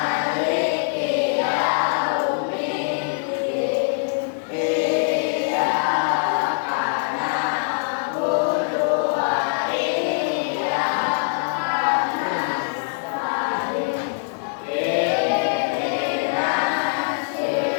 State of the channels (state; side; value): silent; right; digital silence